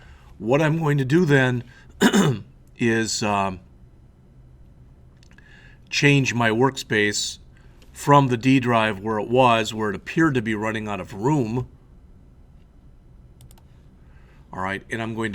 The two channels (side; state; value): both; identical; correlation 1.00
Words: what I'm going to do then is change my workspace from the D drive where it appeared to be running out of room. All right, and I'm going